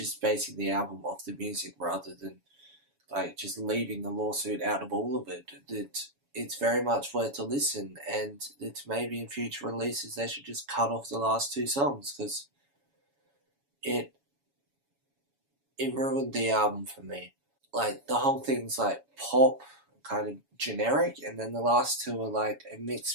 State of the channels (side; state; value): left; late; 7.1 ms